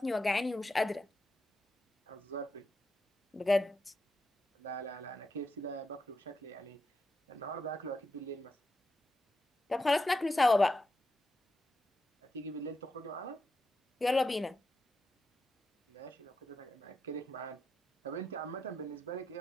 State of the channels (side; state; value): both; normal; correlation 0.86